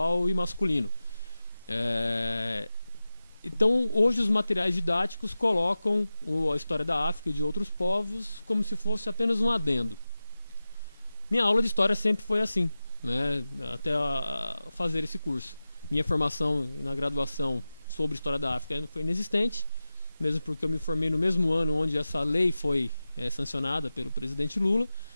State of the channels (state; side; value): inverted; both; correlation -0.95